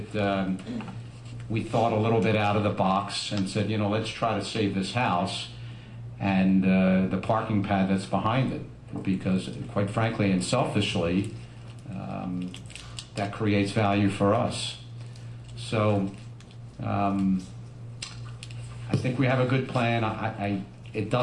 we thought a little bit out of the box and said, let's try to save this house and the parking pad that's behind it, because quite frankly and selfishly, that creates value for us. So I think we have a good plan. It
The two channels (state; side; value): identical; both; correlation 1.00